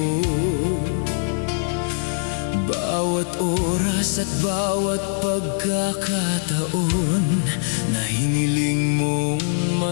Bawat oras at bawat pagkakataon na hiniling mong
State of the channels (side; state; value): right; silent; digital silence